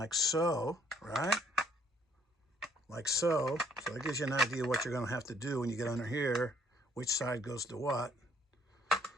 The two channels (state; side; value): normal; both; correlation 0.65